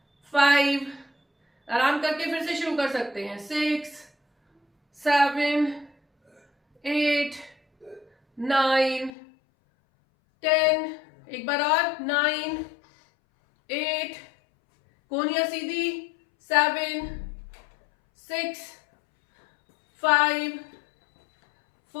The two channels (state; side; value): drops out; right; at 9.1 s